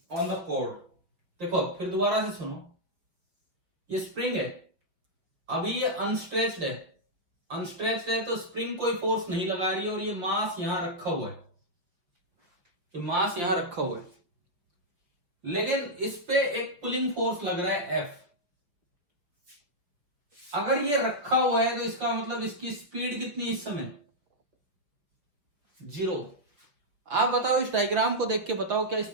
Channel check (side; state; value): left; late; 5.7 ms